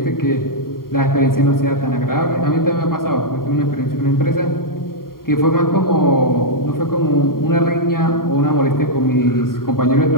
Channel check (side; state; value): right; late; 0.92 ms